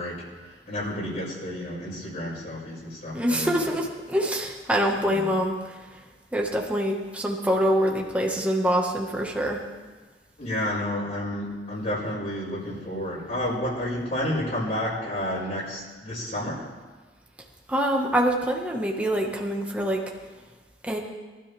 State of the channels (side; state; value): both; normal; correlation 0.57